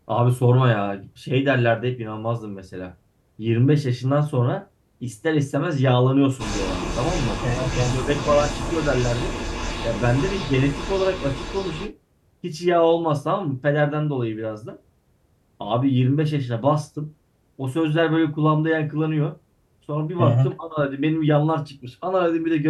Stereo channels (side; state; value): both; identical; correlation 1.00